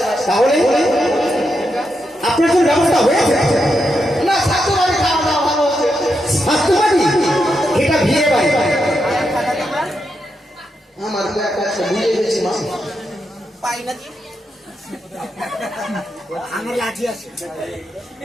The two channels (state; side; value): normal; both; correlation 0.84